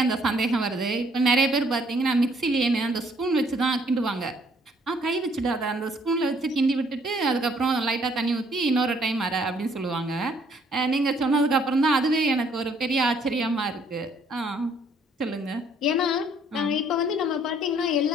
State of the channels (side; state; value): both; normal; correlation 0.63